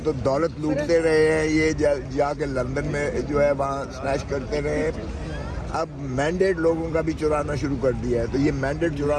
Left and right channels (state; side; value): identical; both; correlation 1.00